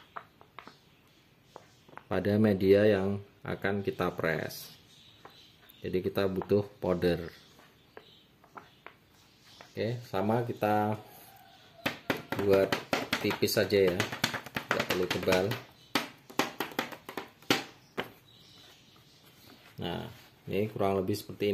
pada media yang akan kita press. Jadi kita butuh powder. Oke, sama kita buat tipis saja ya, tidak perlu tebal. Nah, ini kurang lebih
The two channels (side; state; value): both; identical; correlation 1.00